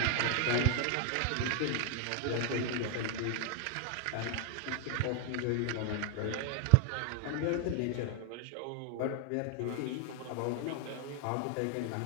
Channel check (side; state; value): both; different; correlation 0.00